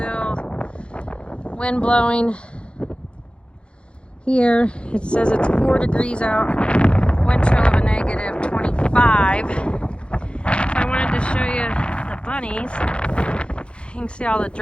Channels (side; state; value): right; late; 0.057 ms